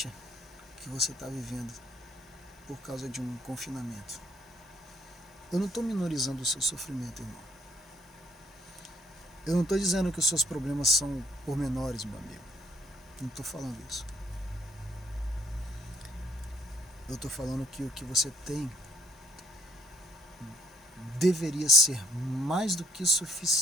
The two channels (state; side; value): normal; both; correlation 0.66